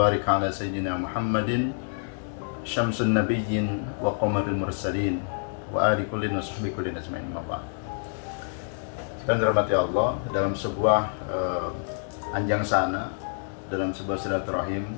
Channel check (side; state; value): right; silent; 60 dB below the other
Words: ala sayyidina Muhammadin syamsun nabiyyin wa qamaril mursalin wa ali kullin wa sahbihi kullin ajma'in. Dan dirahmati Allah, dalam sebuah anjang sana, dalam sebuah silaturahim,